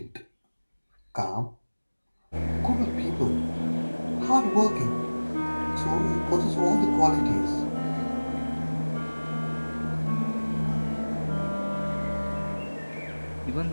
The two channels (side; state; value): both; inverted; correlation -1.00